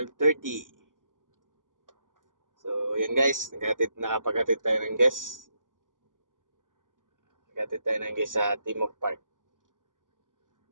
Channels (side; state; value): left; late; 0.88 ms